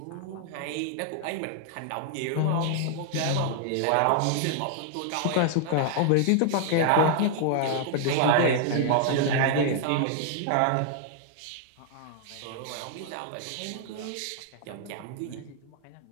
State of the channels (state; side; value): different; both; correlation 0.00